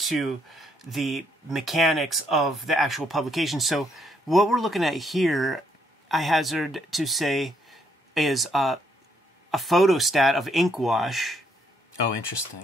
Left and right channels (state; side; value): normal; both; correlation 0.72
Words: the mechanics of the actual publication. So what we're looking at here, I hazard to say, is a photostat of ink wash. Oh,